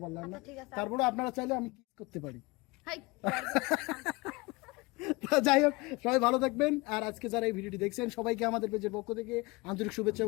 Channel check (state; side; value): quieter; right; 24.4 dB